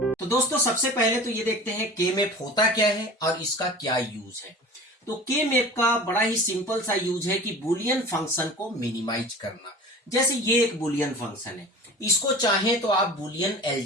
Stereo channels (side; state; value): both; normal; correlation 0.39